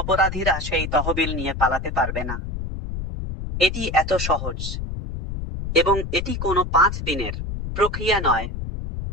সেই তহবিল নিয়ে পালাতে পারবে না। এটি এত সহজ এবং এটি কোনো 5 দিনের প্রক্রিয়া নয়।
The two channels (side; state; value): left; noise; rumble, 5 dB below the sound